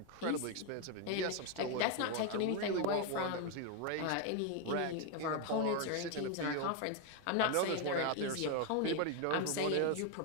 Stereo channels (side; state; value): both; different; correlation 0.01